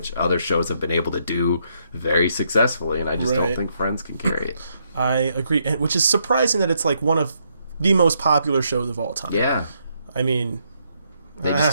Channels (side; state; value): both; inverted; correlation -0.75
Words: other shows have been able to do very successfully, and I just don't think Friends can carry it. I agree, and which is surprising that it's like one of the most popular shows of all time. Yeah. I mean, They just